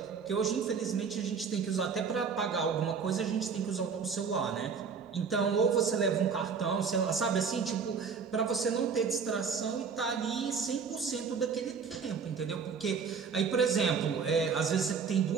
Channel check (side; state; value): left; quieter; 5.9 dB